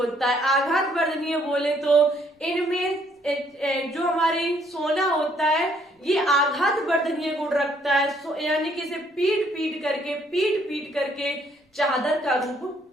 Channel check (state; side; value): normal; both; correlation 0.66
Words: है। आघात वर्धनीय बोले तो इनमें जो हमारी सोना होता है ये आघात वर्धनीय गुण रखता है, यानी कि इसे पीट पीट करके चादर का रूप